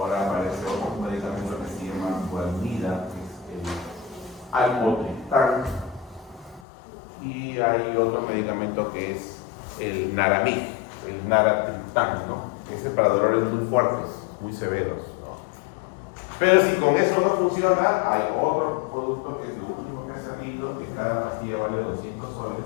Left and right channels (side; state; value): right; drops out; at 6.7 s